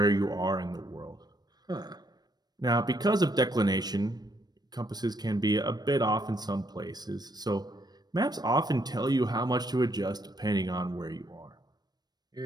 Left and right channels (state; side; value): late; left; 0.19 ms